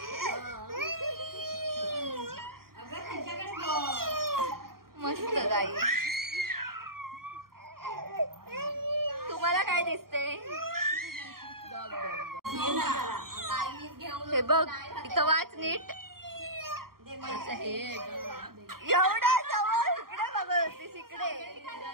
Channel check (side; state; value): left; late; 0.93 ms